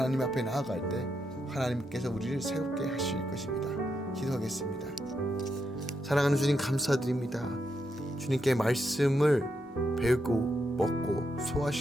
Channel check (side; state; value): both; normal; correlation 0.82